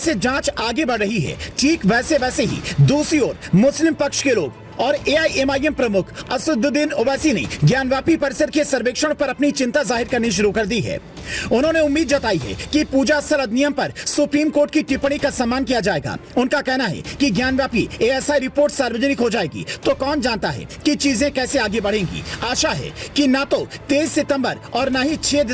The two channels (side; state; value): both; identical; correlation 1.00